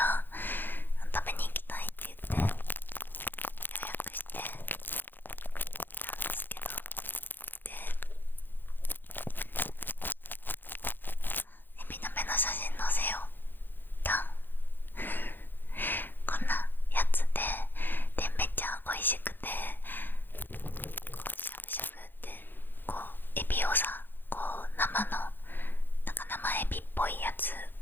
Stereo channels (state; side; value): late; right; 0.094 ms